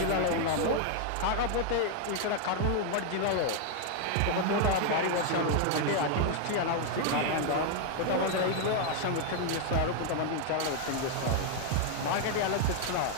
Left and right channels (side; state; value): both; different; correlation 0.00